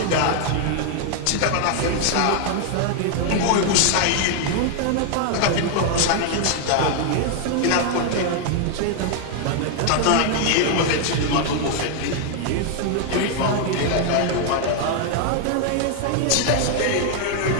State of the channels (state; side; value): different; both; correlation 0.00